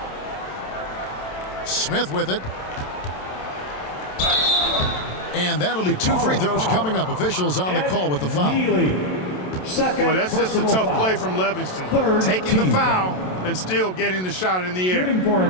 Smith with it. And that'll be 2 free throws coming up. Officials on the call with the foul. Boy, that's just a tough play from Livingston. Taking the foul and still getting the shot in the air. Shooting for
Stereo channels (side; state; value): right; late; 27 ms